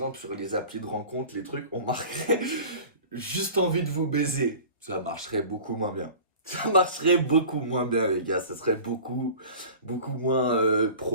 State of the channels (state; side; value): inverted; both; correlation -0.40